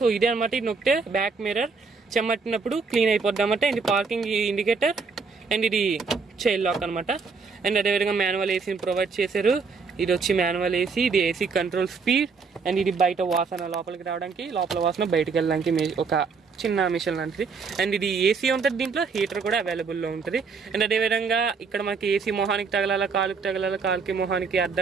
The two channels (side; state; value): left; quieter; 5.0 dB